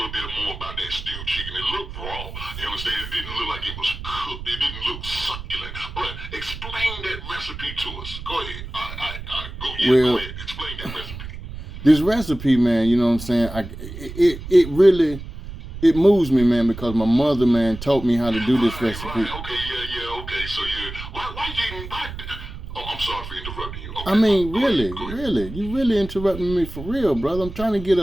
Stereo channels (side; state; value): right; noise; rumble, 10 dB below the sound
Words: bit more about that stewed chicken. It looked raw. You understand? It didn't look like it was cooked. It didn't look succulent. But explain that recipe to us. Go ahead. Go ahead. Explain that recipe. This recipe, man, you know what I'm saying? It really moves me, man, because my mother, man, taught me how to do this recipe. Right. Okay. So I'm sorry for interrupting you. Okay. I mean, really, you really interrupting me for real, brother. I'm trying to get